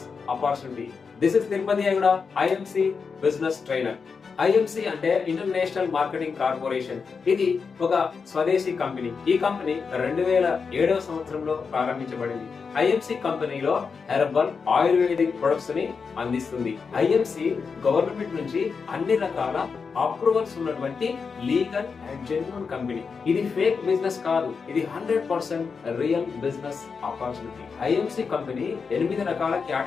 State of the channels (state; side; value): quieter; right; 5.4 dB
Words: opportunity. This is Tirupati Ayyaguda, IMC business trainer. IMC అంటే ఇంటర్నేషనల్ మార్కెటింగ్ కార్పొరేషన్. ఇది ఒక స్వదేశీ కంపెనీ. ఈ కంపెనీ 2007వ సంవత్సరంలో ప్రారంభించబడింది. ఐఎంసి కంపెనీలో హెర్బల్ ఆయుర్వేదిక్ ప్రొడక్ట్స్ ని అందిస్తుంది. ఐఎంసి గవర్నమెంట్ నుంచి అన్ని రకాల అప్రూవల్స్ ఉన్నటువంటి లీగల్ అండ్ జెన్యూన్ కంపెనీ. ఇది ఫేక్ బిజినెస్ కాదు, ఇది 100% real business opportunity. IMC company 8 రకాల